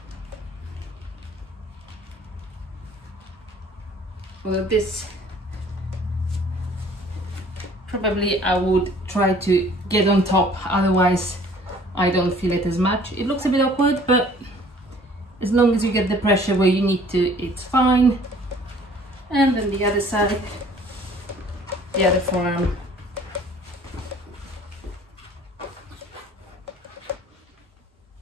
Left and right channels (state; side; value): normal; both; correlation 0.54